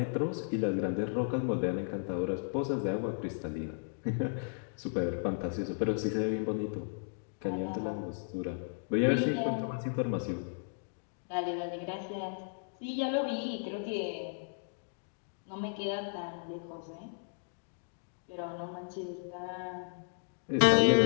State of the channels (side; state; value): right; silent; digital silence